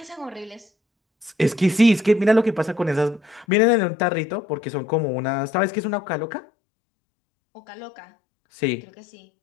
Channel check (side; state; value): right; drops out; at 3.5 s